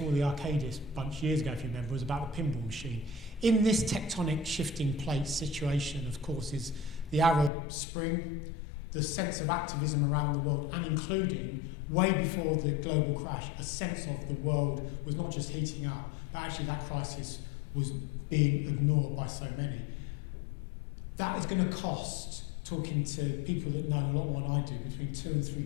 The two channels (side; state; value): right; drops out; at 7.5 s